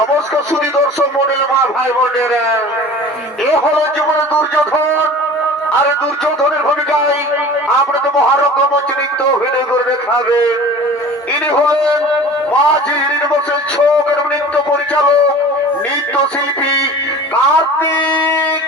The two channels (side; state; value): both; normal; correlation 0.41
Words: সুধী দর্শক মন্ডল মা ভাই বোনেরা, এ হলো জীবনে দুর্যোধন। আর দুর্যোধনের ভূমিকায় আপনাদের মহারঙ্গমঞ্চ নৃত্য অভিনয় করে দেখাবেন। ইনি হলেন মাঝি ইউনিভার্সেল ছক এবং নৃত্য পরিচালক নৃত্য শিল্পী কার্তিক